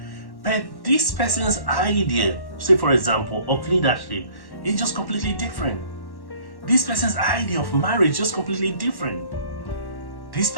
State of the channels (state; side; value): late; right; 1.1 ms